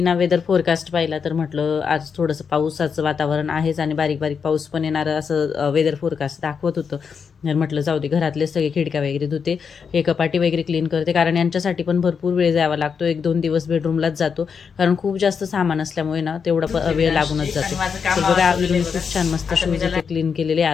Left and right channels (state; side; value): quieter; right; 6.2 dB